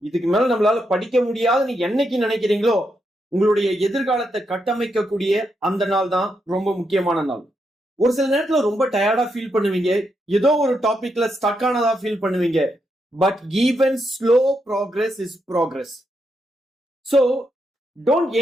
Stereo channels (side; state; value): both; normal; correlation 0.82